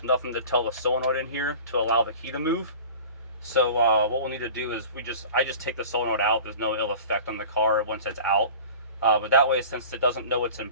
nothing to tell the solenoid in here to allow the key to move. So what we'll need to do is I just take the solenoid out. There's no ill effect on the car once it's out. But that way, since it doesn't know it's in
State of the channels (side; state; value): both; inverted; correlation -0.40